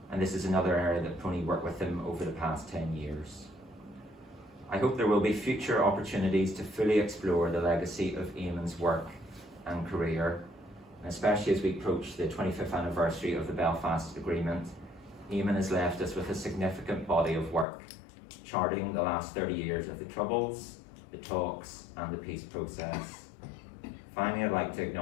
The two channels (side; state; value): right; drops out; at 17.7 s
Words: and this is another area that PRONI worked with him over the past 10 years. I hope there will be future opportunities to fully explore the legacy of Eamon's work and career, and especially as we approach the 25th anniversary of the Belfast Agreement. Eamon has left us with a significant body of work, charting the last 30 years of the Troubles, the talks, and the peace process. Finally, I'd like to